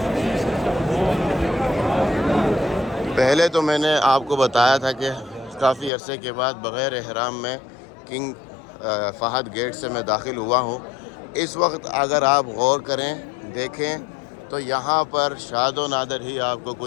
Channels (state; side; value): drops out; right; at 5.9 s